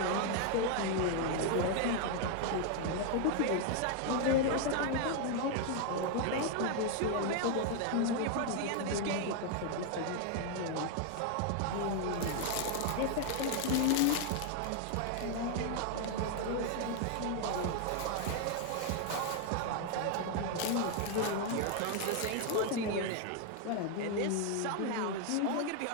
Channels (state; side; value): different; both; correlation 0.00